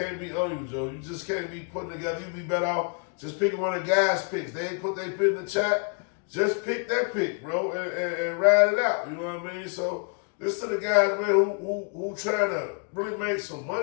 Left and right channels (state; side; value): quieter; right; 38.6 dB